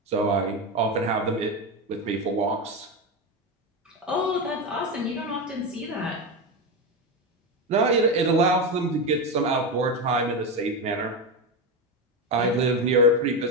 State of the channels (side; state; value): both; normal; correlation 0.14